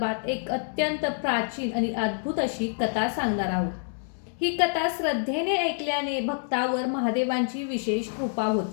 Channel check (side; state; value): right; silent; digital silence